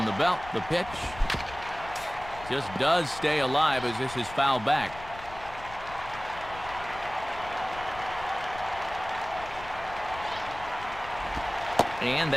the belt, the pitch just does stay alive as this is fouled back. And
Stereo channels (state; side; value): noise; left; rumble, 16 dB below the sound